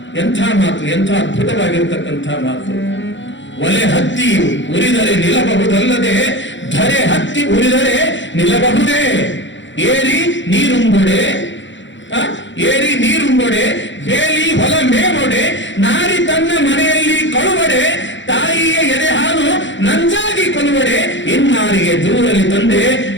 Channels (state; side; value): late; right; 0.54 ms